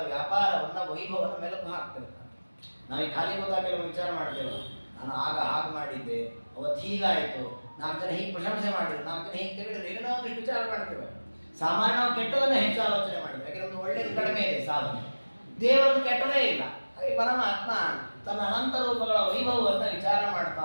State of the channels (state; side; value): inverted; both; correlation -1.00